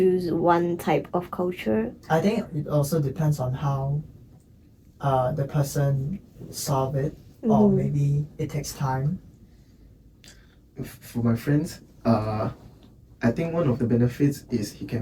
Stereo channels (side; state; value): both; identical; correlation 1.00